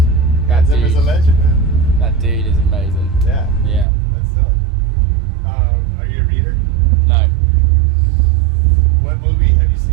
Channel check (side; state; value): left; drops out; at 3.9 s